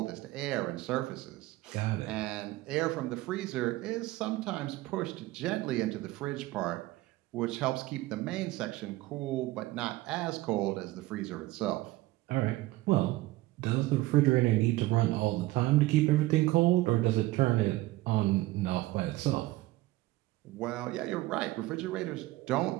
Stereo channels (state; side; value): quieter; left; 18.4 dB